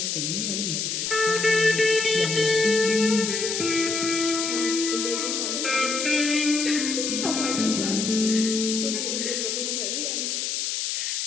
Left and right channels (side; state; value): left; noise; hiss, 1 dB below the sound